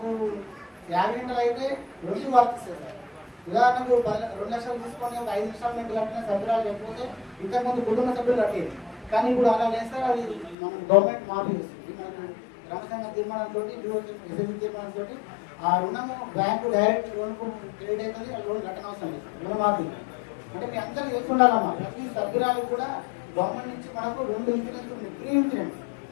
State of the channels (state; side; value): drops out; right; at 10.6 s